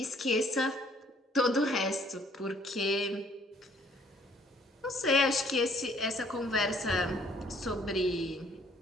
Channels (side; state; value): both; normal; correlation 0.62